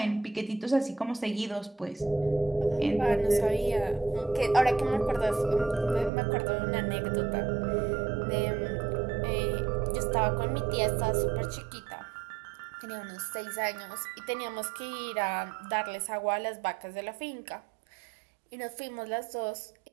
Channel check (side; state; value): left; drops out; at 6.1 s